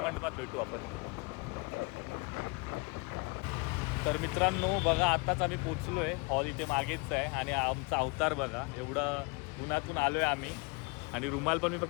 मंडपात भेटू आपण. तर मित्रांनो बघा, आत्ताच आम्ही पोचलो आहे. हॉल इथे मागेच आहे आणि आमचा अवतार बघा, एवढं उन्हातून आलो आहे आम्ही. आणि रुमाल पण मी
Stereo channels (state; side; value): quieter; right; 29.3 dB